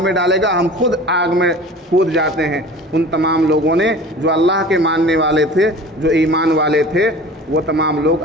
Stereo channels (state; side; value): normal; both; correlation 0.41